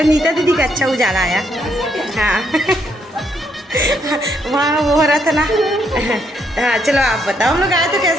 नीता दीदी का अच्छा उजाला आया। हाँ वहाँ वो हो रहा था ना। हाँ चलो आप बताओ, हम लोग आए तो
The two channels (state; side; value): normal; both; correlation 0.74